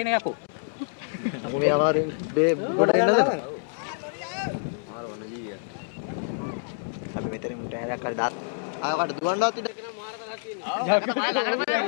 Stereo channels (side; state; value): right; silent; digital silence